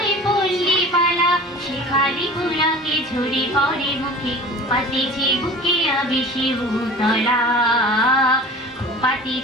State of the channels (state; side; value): normal; both; correlation 0.41